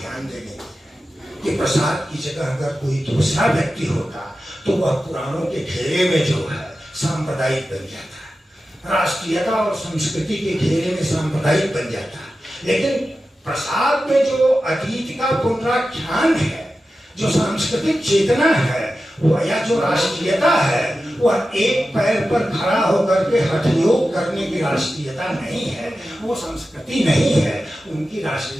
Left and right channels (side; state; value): both; normal; correlation 0.93